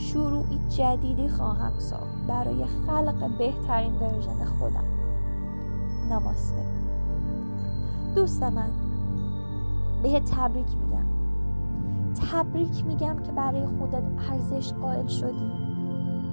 جدیدی خواهم ساخت برای خلق بهترین ورژن خودم. نماسته. دوست من، بهت تبریک میگم که برای خودت ارزش قائل شدی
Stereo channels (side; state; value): both; inverted; correlation -1.00